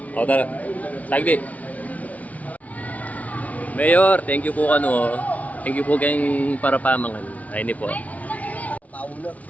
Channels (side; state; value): right; late; 0.070 ms